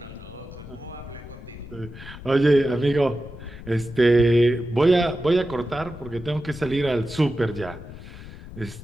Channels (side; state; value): left; noise; rumble, 15 dB below the sound